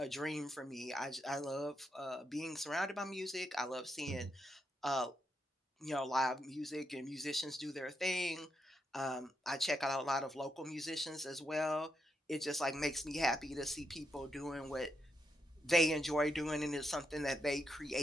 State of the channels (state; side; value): normal; both; correlation 0.82